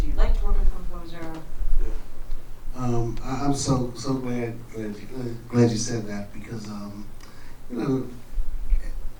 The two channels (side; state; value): both; identical; correlation 1.00